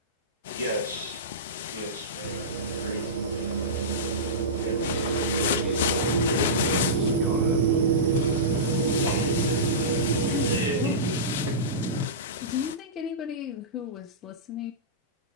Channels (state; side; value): normal; both; correlation -0.18